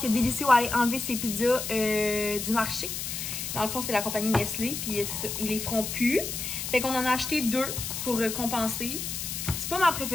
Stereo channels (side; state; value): left; noise; hiss, 5 dB below the sound